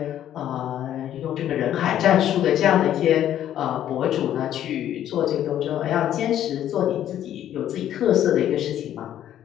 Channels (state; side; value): quieter; right; 11.3 dB